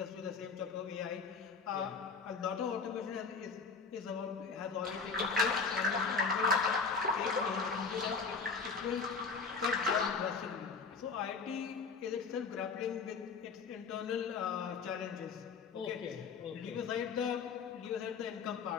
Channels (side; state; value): right; quieter; 5.0 dB